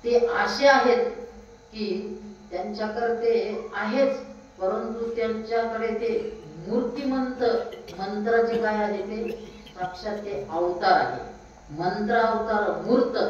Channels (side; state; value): both; identical; correlation 1.00